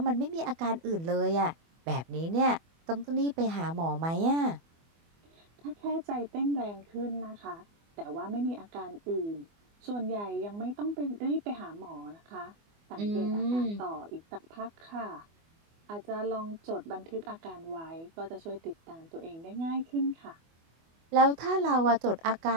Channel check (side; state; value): left; late; 24 ms